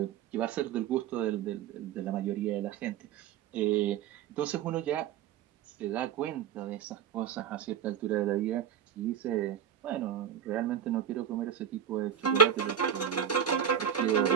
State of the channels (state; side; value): quieter; left; 8.8 dB